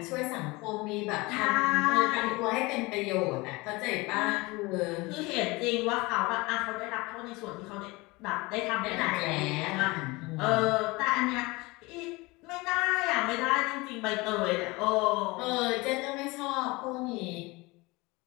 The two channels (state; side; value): quieter; right; 23.5 dB